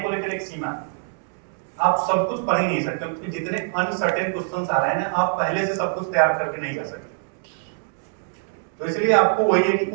को लेकर एक सीमा है। आप सब कुछ पढ़ ही नहीं सकते, क्योंकि जितने अनसर्टेन क्वेश्चंस आ रहे हैं ना, आप पहले से सब कुछ तैयार करके नहीं जा सकते। तो इसलिए आपको वही है कि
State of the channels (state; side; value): silent; left; digital silence